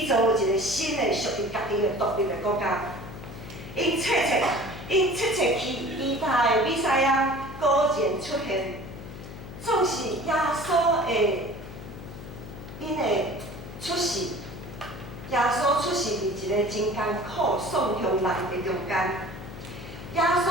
造一个新的属于家己的独立的国家。因切期待的弥赛亚果然出现，总是耶稣的因的出世。耶稣出世伫一个真艰苦、丧向人的中间。耶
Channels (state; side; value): noise; left; hum, 12 dB below the sound